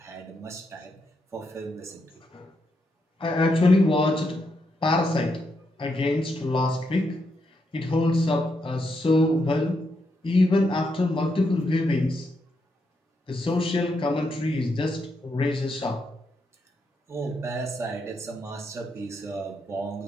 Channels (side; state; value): both; normal; correlation 0.81